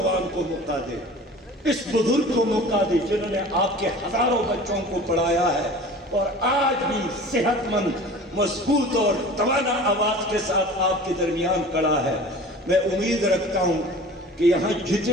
کو موقع دے، اس بزرگ کو موقع دے جنہوں نے آپ کے ہزاروں بچوں کو پڑھایا ہے اور آج بھی صحت مند، مضبوط اور توانا آواز کے ساتھ آپ کے درمیان کھڑا ہے۔ میں امید رکھتا ہوں کہ یہاں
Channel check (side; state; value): both; normal; correlation 0.41